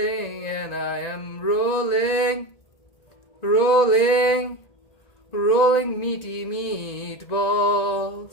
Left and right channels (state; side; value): late; right; 1.9 ms